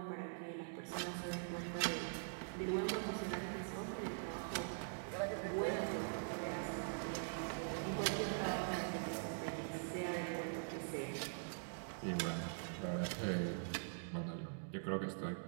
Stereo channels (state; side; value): silent; left; digital silence